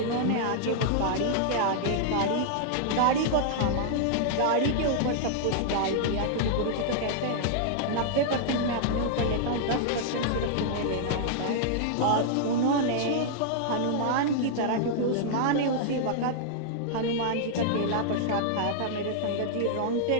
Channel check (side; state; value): both; different; correlation -0.01